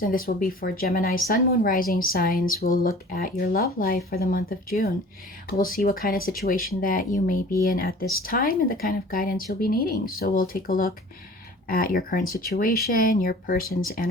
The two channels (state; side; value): normal; both; correlation 0.45